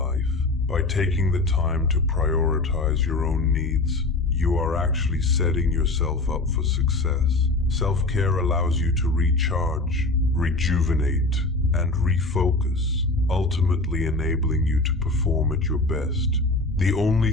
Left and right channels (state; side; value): quieter; right; 3.1 dB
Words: By taking the time to prioritize your own needs, you are actually setting yourself up for success. Self-care allows you to recharge, rejuvenate, and refocus, ultimately enabling you to perform at your best. The only